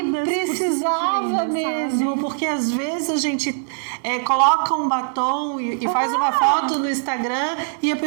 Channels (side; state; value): left; silent; digital silence